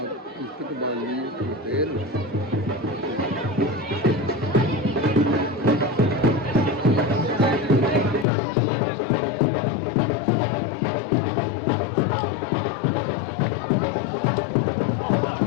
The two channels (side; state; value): right; drops out; at 8.2 s